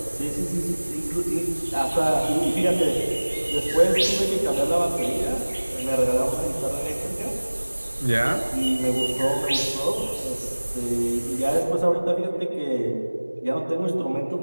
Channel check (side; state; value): both; inverted; correlation -1.00